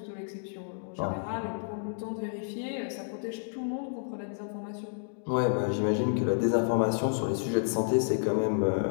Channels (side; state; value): right; silent; digital silence